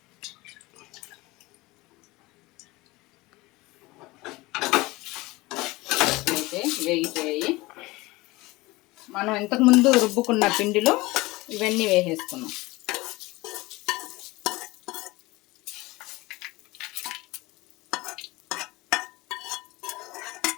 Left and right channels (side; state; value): right; quieter; 21.5 dB